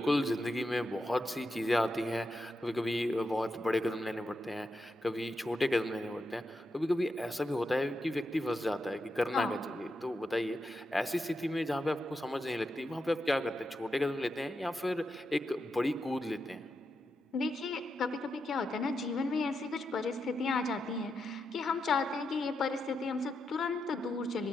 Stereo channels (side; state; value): both; normal; correlation 0.86